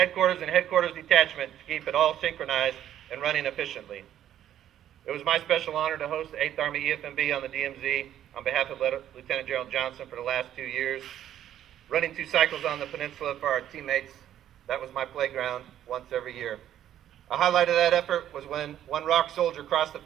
and headquarters detachment to keep it all synchronized and running efficiently. It was my special honor to host the 8th Army EFMB on the DMZ on behalf of Lieutenant General Johnson for the last 2 years. Running 2 cycles on the peninsula for our teammates, that was my playground once every year. A highlight of that effort was when one ROC soldier crossed the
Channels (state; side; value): quieter; left; 11.2 dB